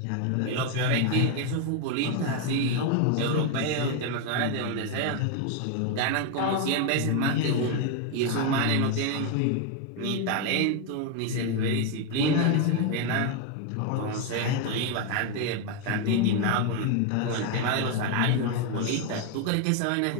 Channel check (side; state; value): both; different; correlation 0.01